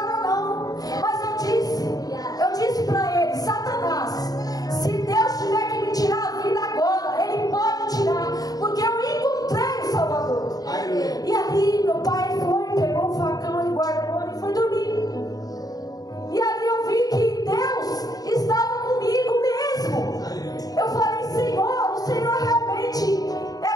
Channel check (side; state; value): right; late; 0.18 ms